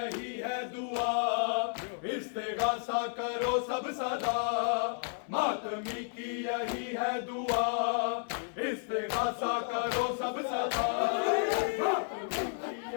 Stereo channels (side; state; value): right; silent; 56 dB below the other